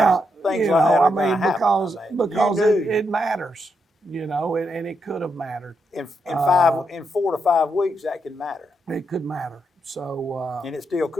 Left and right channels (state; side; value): normal; both; correlation 0.82